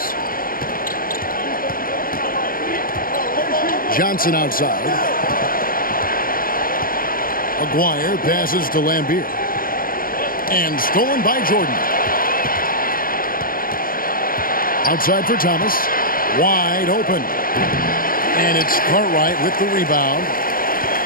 Johnson outside. Aguirre passes to Lambeer. And stolen by Jordan. Outside for Thomas. Wide open. And it's Cartwright with the rebound.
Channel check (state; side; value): late; right; 0.41 ms